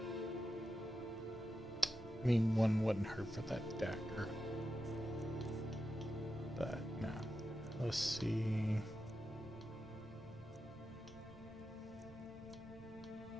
mean, one wouldn't hurt for that dagger. But, no. Let's see.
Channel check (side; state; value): both; normal; correlation 0.89